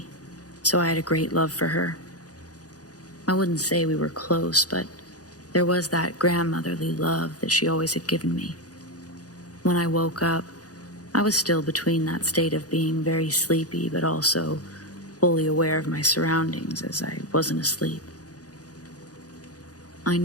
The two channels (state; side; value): late; right; 0.67 ms